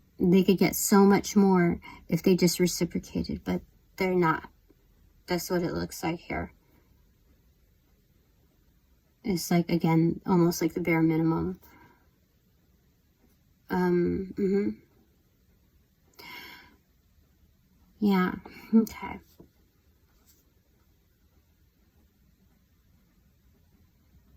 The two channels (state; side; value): identical; both; correlation 1.00